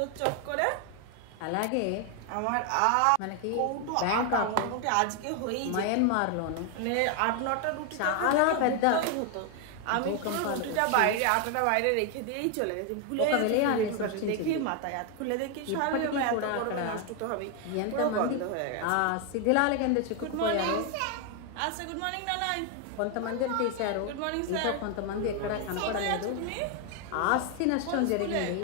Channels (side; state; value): both; different; correlation 0.01